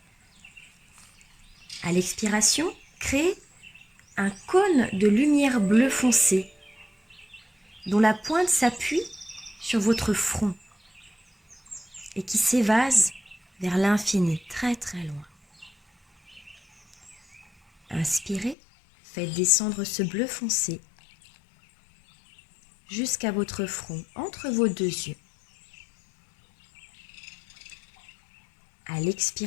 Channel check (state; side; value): drops out; right; at 18.6 s